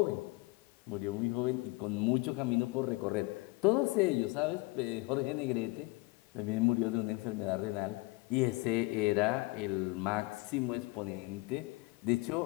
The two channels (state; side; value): quieter; right; 24.2 dB